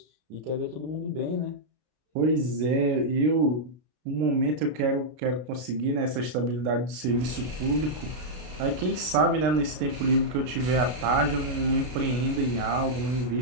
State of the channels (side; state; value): left; late; 32 ms